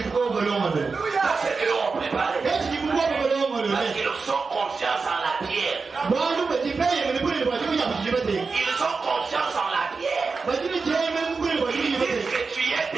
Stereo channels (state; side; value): quieter; left; 4.5 dB